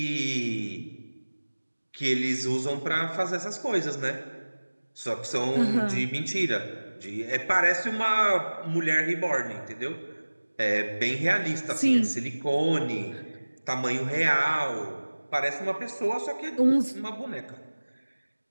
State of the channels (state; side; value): inverted; both; correlation -1.00